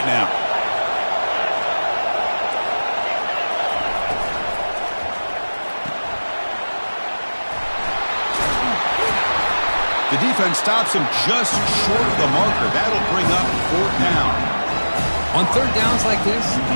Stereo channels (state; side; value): inverted; both; correlation -1.00